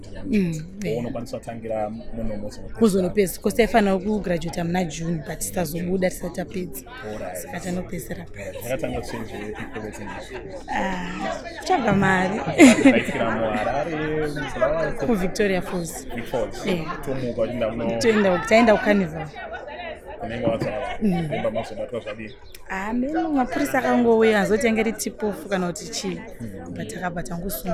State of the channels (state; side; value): identical; both; correlation 1.00